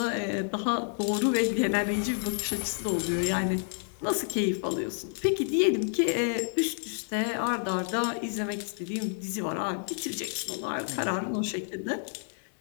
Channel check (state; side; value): silent; right; 58 dB below the other